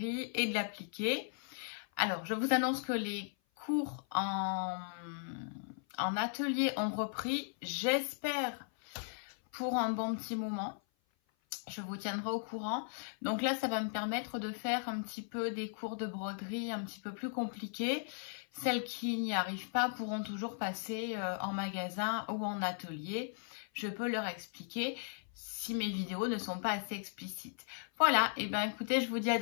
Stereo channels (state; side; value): silent; right; 53 dB below the other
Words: et de l'appliqué. Alors, je vous annonce que les cours en atelier ont repris, j'espère pour un bon petit moment. Je vous tiendrai au courant. Donc là, ça va me permettre de faire un petit peu des cours de broderie un petit peu plus compliqués. Celles qui n'y arrivent pas pourront toujours passer en magasin ou en atelier. Je peux leur expliquer si mes vidéos ne sont pas assez explicites. Voilà, et bien écoutez, je vous dis à